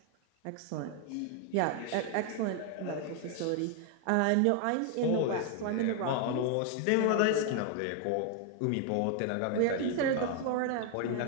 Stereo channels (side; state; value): both; different; correlation 0.01